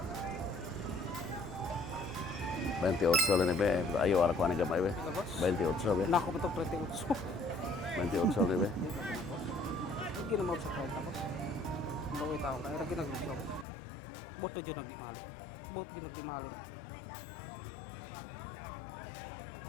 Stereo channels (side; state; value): right; drops out; at 13.7 s